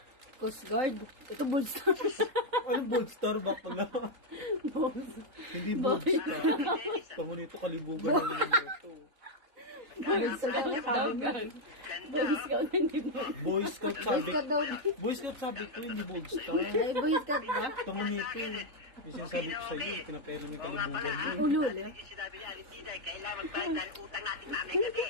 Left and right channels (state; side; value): late; left; 3.7 ms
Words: Coast Guard. Ito Bullstar. Ano Boldstar ba pala? Hindi Boldstar. Tama nito kalibugan na naman ito. Bullstar daw sabi mo. Boy Scout hindi mo. Boy Scout Boy sabi. Scout daw. Boy Scout sabi ko, hindi Boldstar. Ay, Boy Scout ba? Tama nito. Yung sinasabi ko sa'yo, pinapero niya kalibugan mo. Ulul. Sinabi ni Alice Tida, kailangan magbayad dahil utang natin namin gabi.